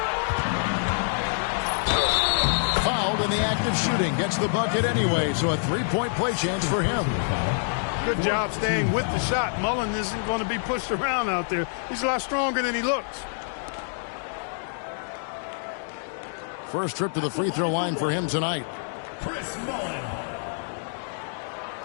Fouled in the act of shooting. Gets the bucket anyway, so a three-point play chance for him. Good job staying with the shot. Mullen isn't going to be pushed around out there. He's a lot stronger than he looks. First trip to the free throw line for him tonight. Chris Mullen.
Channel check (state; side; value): silent; right; digital silence